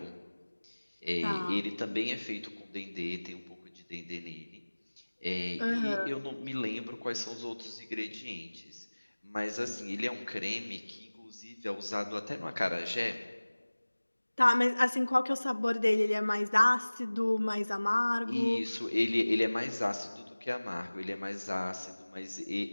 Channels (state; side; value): inverted; both; correlation -1.00